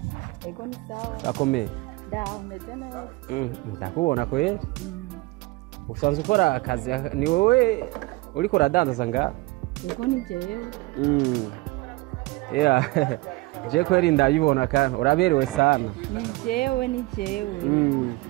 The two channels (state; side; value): quieter; left; 22.0 dB